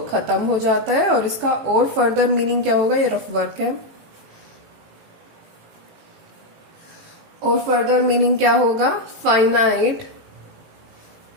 खत्म हो जाता है। और इसका और फर्दर मीनिंग क्या होगा, ये रफ वर्क है। और फर्दर मीनिंग क्या होगा, फाइनाइट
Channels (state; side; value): late; left; 18 ms